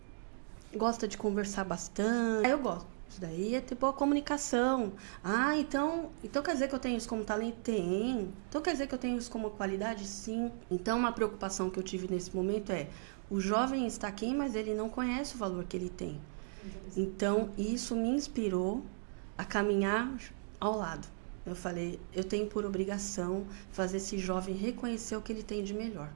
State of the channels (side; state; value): left; silent; digital silence